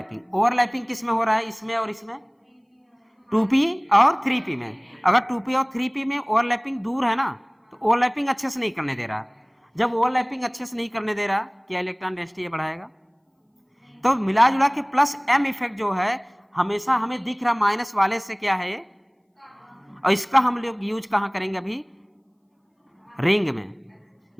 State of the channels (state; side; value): identical; both; correlation 1.00